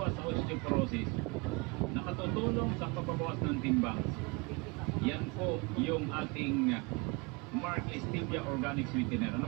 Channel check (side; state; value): left; quieter; 28.5 dB